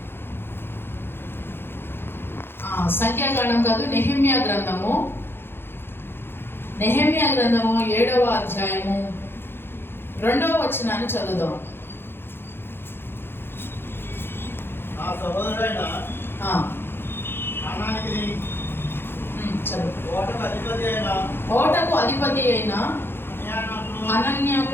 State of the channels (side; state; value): right; late; 0.11 ms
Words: కాదు, నెహెమ్యా గ్రంథము 7వ అధ్యాయము 2వ వచనాన్ని చదువుదాం. ఓటకు అధిపతి అయిన